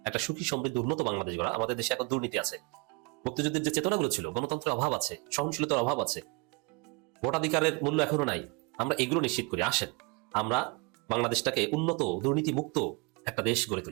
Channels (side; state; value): left; quieter; 29.6 dB